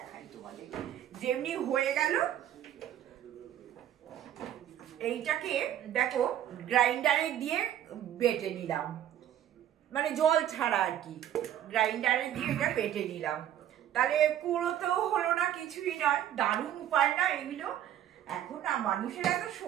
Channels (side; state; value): left; quieter; 11.2 dB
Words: তোমাদের, যেমনি হয়ে গেল এইটাকে দেখো গ্রাইন্ডারে দিয়ে বেটে নিলাম, মানে জল ছাড়া আর কি, গ্রাইন্ডারে দিয়ে এটা বেটে নিলাম। তাহলে কুড়োতেও হলো না, কিছুই নয়। দারুণ উপায় না এগুলো? এখন না মানুষের এত